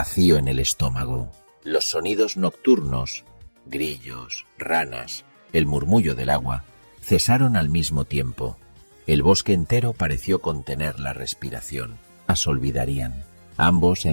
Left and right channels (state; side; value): inverted; both; correlation -1.00